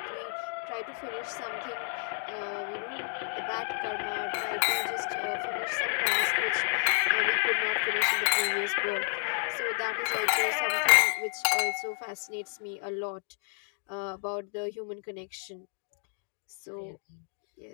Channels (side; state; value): right; silent; 57 dB below the other